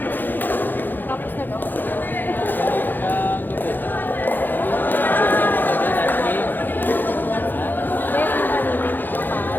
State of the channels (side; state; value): right; late; 0.089 ms